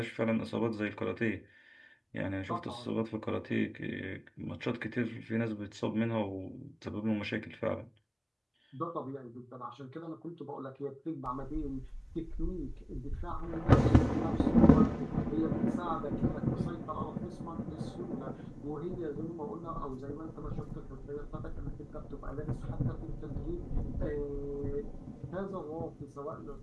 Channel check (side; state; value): both; identical; correlation 1.00